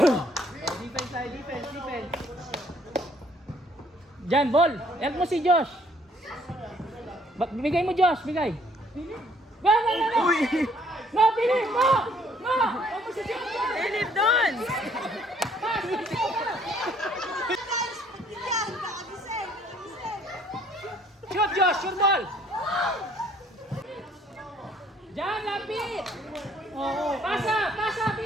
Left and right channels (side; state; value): both; normal; correlation 0.62